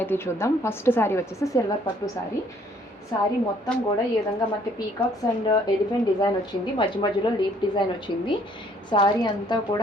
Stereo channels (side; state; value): both; normal; correlation 0.62